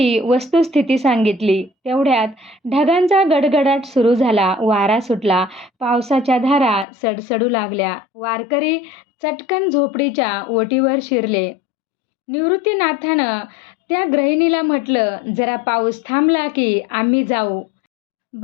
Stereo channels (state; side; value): drops out; right; at 6.9 s